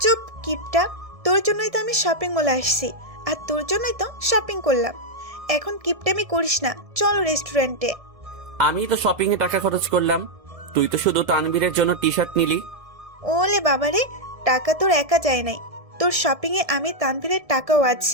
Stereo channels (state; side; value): late; left; 1.7 ms